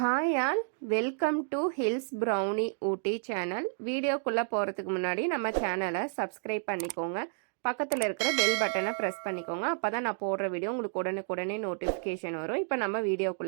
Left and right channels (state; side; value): silent; left; 57 dB below the other